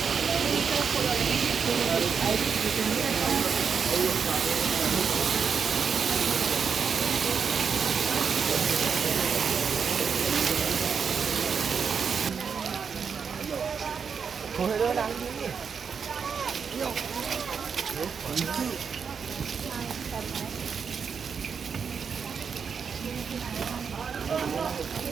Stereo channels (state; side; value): quieter; left; 6.3 dB